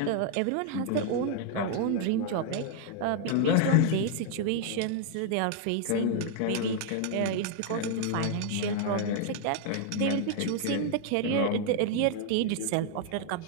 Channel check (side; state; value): both; different; correlation 0.00